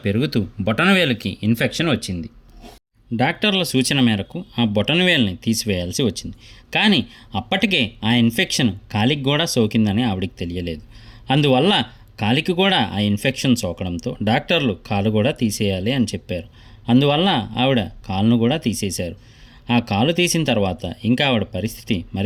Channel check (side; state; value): both; identical; correlation 1.00